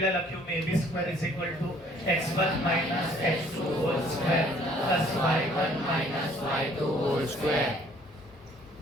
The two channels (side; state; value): both; normal; correlation 0.59